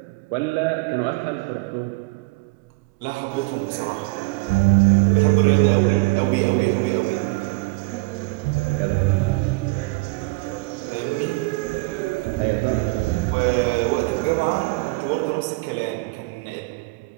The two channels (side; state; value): left; quieter; 24.7 dB